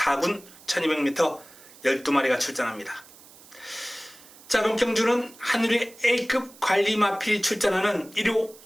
1200m 12마리가 출전합니다. 자, 이번 경주는 하늘의 A급 관리 마필이 출전하는 1호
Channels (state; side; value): noise; right; hiss, 22 dB below the sound